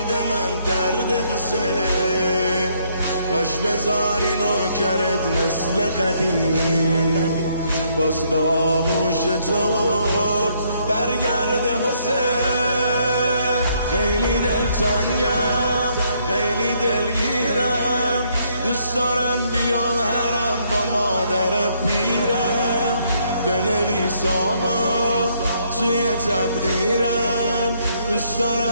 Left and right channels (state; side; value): inverted; both; correlation -0.70